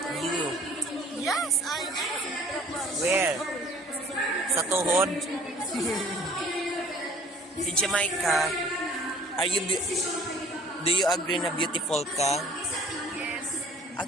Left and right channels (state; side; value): normal; both; correlation 0.52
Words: You. Yes, I am. Where? Sa tuhod? Si Jamaica, do you agree na beautiful ka? Yes.